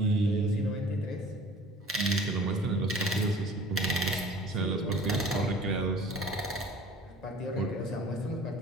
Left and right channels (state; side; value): normal; both; correlation 0.48